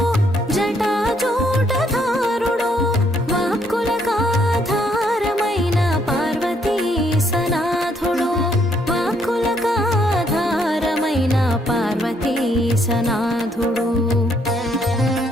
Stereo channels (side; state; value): both; normal; correlation 0.70